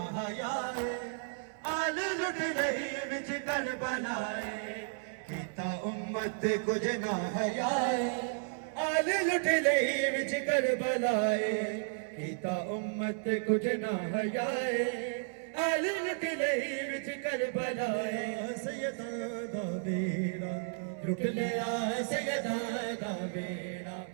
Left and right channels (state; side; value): silent; left; 56 dB below the other